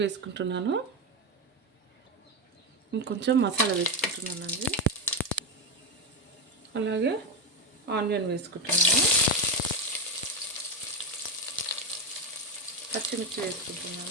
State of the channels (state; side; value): normal; both; correlation 0.11